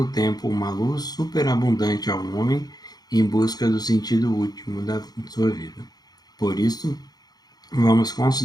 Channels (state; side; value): late; right; 0.19 ms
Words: tempo uma luz superabundante ao homem em busca do sentido último da sua vida. Por isso, vamos